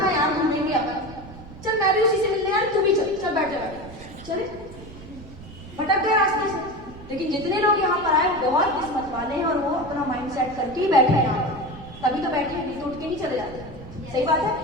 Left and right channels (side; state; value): right; noise; rumble, 17 dB below the sound